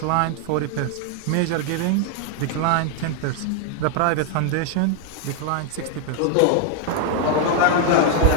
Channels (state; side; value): different; both; correlation 0.00